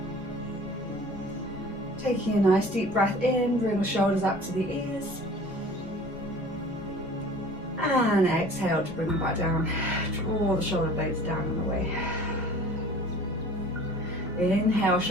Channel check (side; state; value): both; normal; correlation 0.46